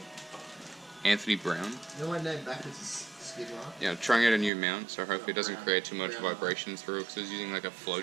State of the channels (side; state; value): left; drops out; at 4.5 s